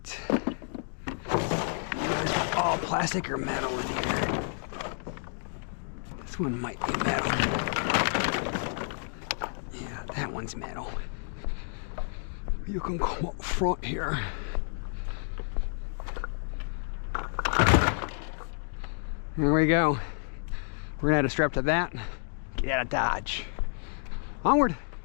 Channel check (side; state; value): right; silent; 58 dB below the other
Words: It's all plastic or metal in here. This one might be metal. Yeah, that one's metal. You can come up front here. There we go. We're gonna add a strap to that. Get out of Dodge. Onward.